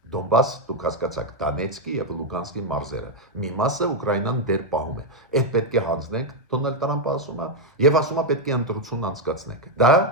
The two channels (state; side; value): normal; both; correlation 0.02